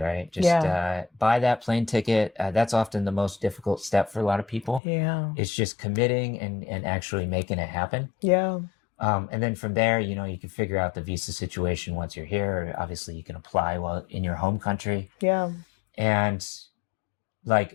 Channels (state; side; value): drops out; right; at 4.8 s